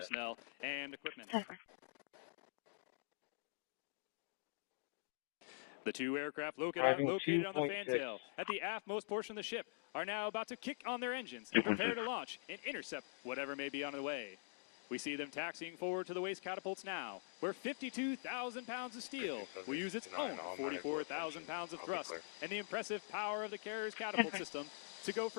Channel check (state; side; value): silent; right; digital silence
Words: and equipment. The 2 aircraft located on the fantail at the aftmost portion of the ship are now about to kick on their engines and prepare to launch and intercept whatever may be on the way. We see them taxiing forward to the waste catapults now, where 52,000 pounds of steel will use its own 44,000 pounds of thrust and the impressive power of the carrier's catapult system to go